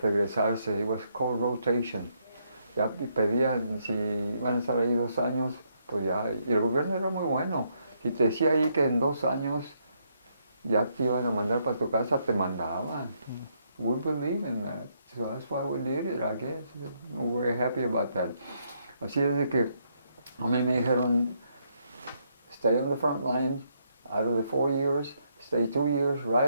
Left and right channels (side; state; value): both; inverted; correlation -0.75